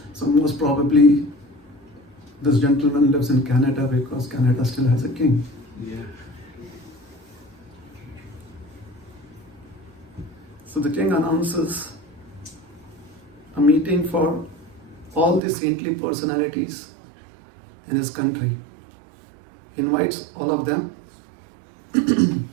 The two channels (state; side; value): drops out; left; at 15.4 s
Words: So most probably this gentleman lives in Canada because Canada still has a king. Yeah. So the king announces a meeting for all the saintly personalities in his country. He invites all of them